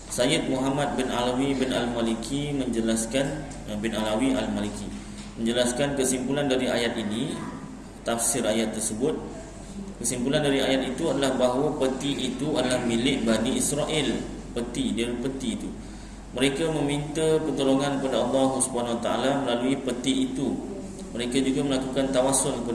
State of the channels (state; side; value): identical; both; correlation 1.00